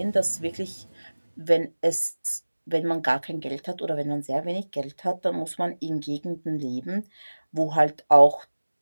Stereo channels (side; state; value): both; inverted; correlation -1.00